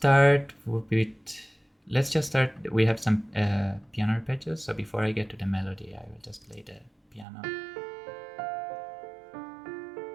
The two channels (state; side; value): drops out; left; at 7.2 s